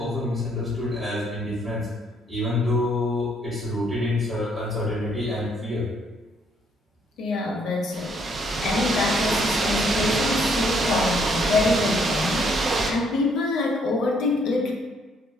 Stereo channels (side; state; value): both; normal; correlation 0.68